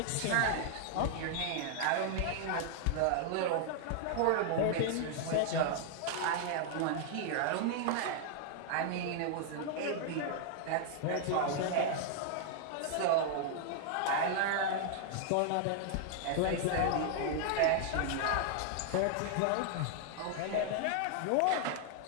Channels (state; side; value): different; both; correlation 0.00